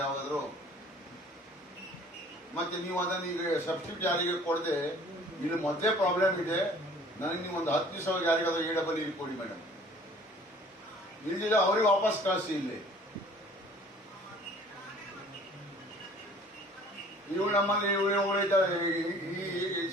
ಯಾವಾಗಾದ್ರೂ? ಮತ್ತೆ ನೀವು ಅದನ್ನ ಈಗ ಸಬ್ಸ್ಟಿಟ್ಯೂಟ್ ಯಾರಿಗೆ ಕೊಡದೆ, ಇಲ್ಲಿ ಮೊದಲೇ ಪ್ರಾಬ್ಲಮ್ ಇದೆ, ನನಗೆ ನೀವು ಒಂದು 10 ದಿವಸ ಯಾರಿಗಾದ್ರೂ AEE ಕೊಡಿ ಮೇಡಮ್, ಇಲ್ದಿಲ್ಲ ಅವ್ರಿಗೆ ವಾಪಸ್ ಕಳಿಸಿ. ಇಲ್ಲಿ ಇವು ನಮ್ಮಲ್ಲಿ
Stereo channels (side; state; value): both; normal; correlation 0.51